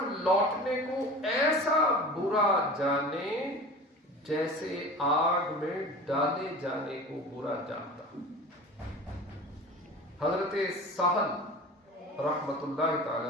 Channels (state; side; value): normal; both; correlation 0.37